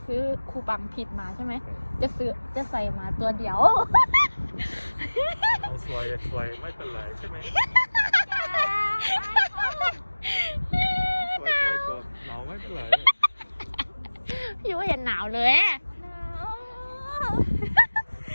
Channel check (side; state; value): both; inverted; correlation -1.00